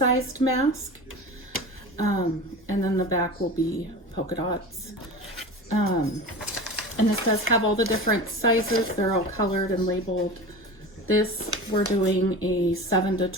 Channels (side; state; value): both; normal; correlation 0.32